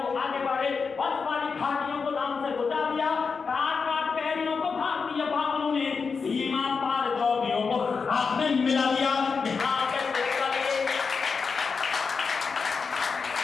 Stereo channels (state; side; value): quieter; right; 5.2 dB